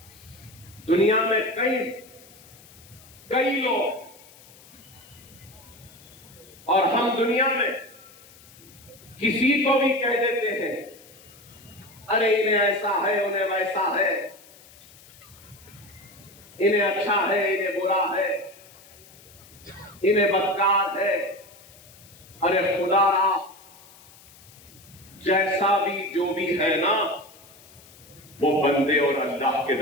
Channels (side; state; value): left; noise; hiss, 23 dB below the sound